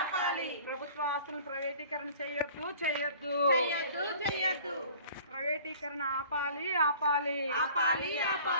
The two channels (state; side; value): inverted; both; correlation -0.48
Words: ప్రభుత్వ ఆస్తులను ప్రైవేటీకరణ చేయొద్దు, చేయొద్దు, చెయ్యొద్దు, చెయ్యొద్దు. ప్రైవేటీకరణ ఆపాలి, ఆపాలి, ఆపాలి,